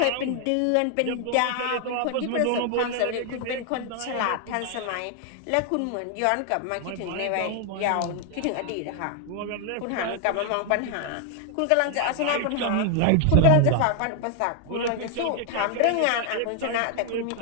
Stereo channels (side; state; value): both; different; correlation 0.00